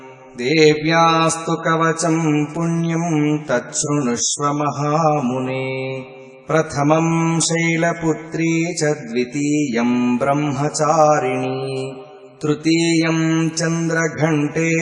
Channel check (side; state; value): both; identical; correlation 1.00